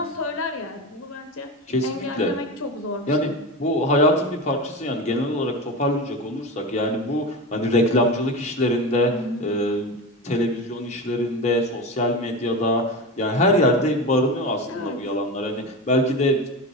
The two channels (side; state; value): both; normal; correlation 0.24